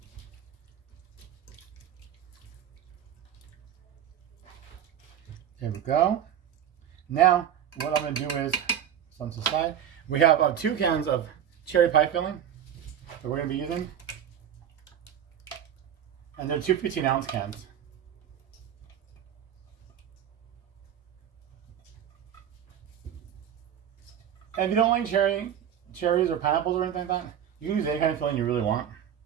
There we go. Now, what I'm going to do is, on the side, we have 2 cans of cherry pie filling that we're going to be using. And they're 2 15-ounce cans. And if you don't like cherries or pineapples or anything like that, you can use any kind of filling you really want.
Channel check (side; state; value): left; quieter; 9.7 dB